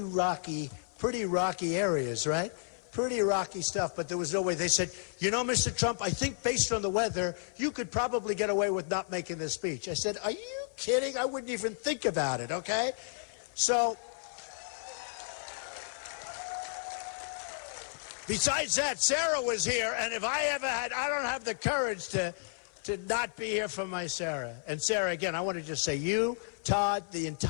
areas, right? Pretty rocky stuff, but there was no way. They said, you know, Mr. Trump, I think based on the weather, you could probably get away with not making this speech. I said, are you kidding? I wouldn't even think about it, okay? So Besides that, Sarah was here, and if I ever had, I don't have the courage to not be here for my Sarah. And Sarah, again, I want to just say, you, Todd, the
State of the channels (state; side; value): silent; right; 56 dB below the other